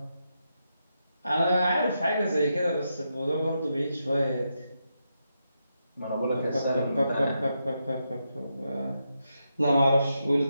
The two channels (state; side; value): inverted; both; correlation -0.84